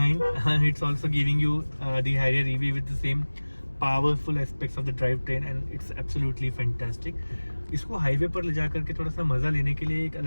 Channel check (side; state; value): both; inverted; correlation -1.00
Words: it's also giving you the Harrier EV with the same powerful aspects of the drive train, and it's absolutely fantastic. इसको हाईवे पर ले जा करके थोड़ा सा मज़ा लेने के लिए एक